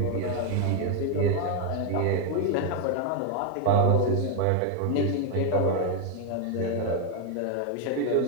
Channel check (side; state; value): both; different; correlation 0.01